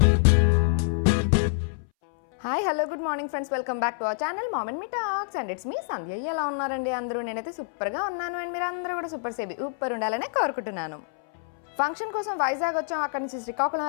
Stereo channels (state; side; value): silent; right; 60 dB below the other